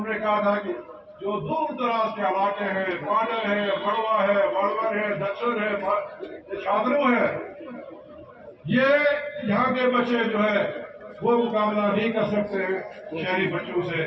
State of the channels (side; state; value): both; identical; correlation 1.00